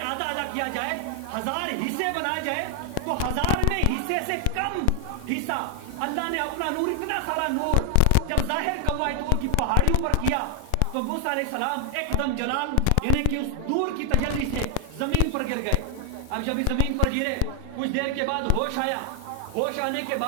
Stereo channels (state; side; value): different; both; correlation 0.00